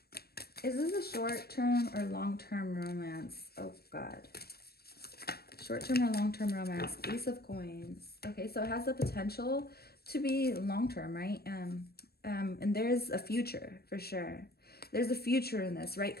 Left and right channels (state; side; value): late; right; 0.46 ms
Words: Is this a short-term or long-term romance? Oh God. Short-term or long-term romance. Ace of Coins. Okay, so it has the potential to be long-term, right? And there's a future for sure. There's a future in this, right?